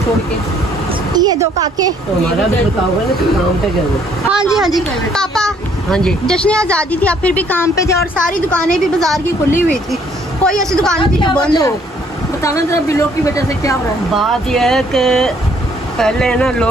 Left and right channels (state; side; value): normal; both; correlation 0.64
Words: छोड़ के ये दो काके। तो हमारा भी बताओगे ना कि काम पे जाओ। हाँ जी हाँ जी पापा। हाँ जी जश्न आज़ादी थी, आप फिर भी काम पे थे और सारी दुकानें भी बाजार की खुली हुई थी, कोई ऐसी दुकान थी जो बंद हो। बताना जरा बिलों की वजह से क्या हो रहा है। बात यह है कि पहले ना